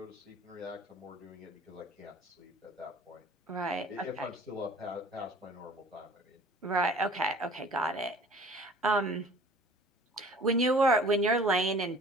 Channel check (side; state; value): both; normal; correlation 0.49